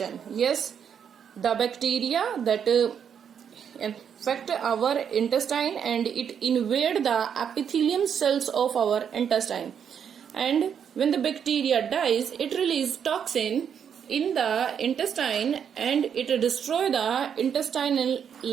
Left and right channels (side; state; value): left; quieter; 7.9 dB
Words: Yes, the bacteria that infect our intestine, and it invade the epithelium cells of our intestine, and when the bacteria dies, it releases toxin in the intestine, and it destroy the intestinal